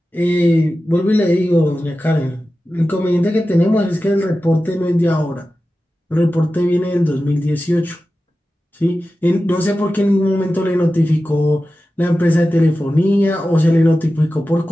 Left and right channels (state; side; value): normal; both; correlation 0.94